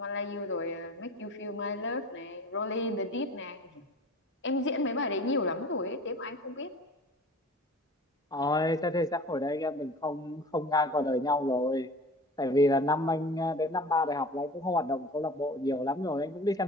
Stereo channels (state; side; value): normal; both; correlation 0.41